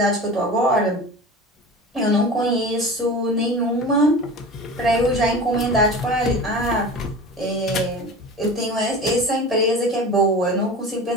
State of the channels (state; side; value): normal; both; correlation 0.34